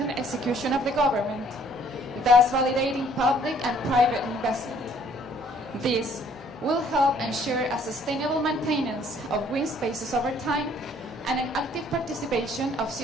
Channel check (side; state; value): both; normal; correlation 0.60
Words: execution of the government, thus validating public and private investment. This will help ensure a sustainable maintenance of green spaces over time and an active participation of